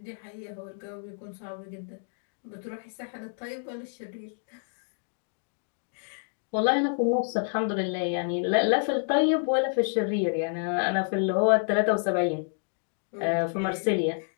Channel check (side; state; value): right; silent; digital silence